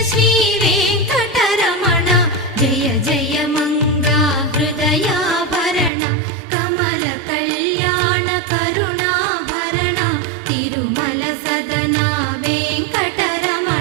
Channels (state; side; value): drops out; left; at 5.9 s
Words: శ్రీ వెంకటరమణ జయ జయ మంగా హృదయాభరణ కమల కళ్యాణ కరుణాభరణ తిరుమల సదన